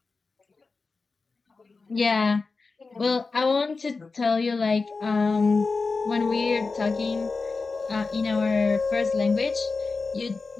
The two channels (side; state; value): right; quieter; 4.1 dB